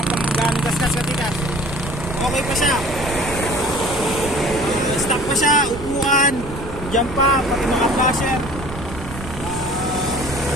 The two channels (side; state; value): right; noise; rumble, 11 dB below the sound